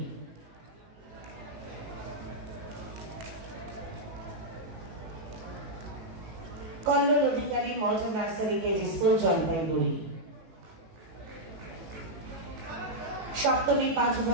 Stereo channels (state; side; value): late; left; 18 ms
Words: कल्लोल अधिकारी modern नर्सारी KG school Jalpaiguri सप्तमी 5